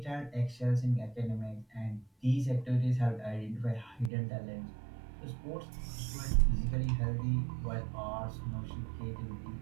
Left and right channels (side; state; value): left; drops out; at 4.1 s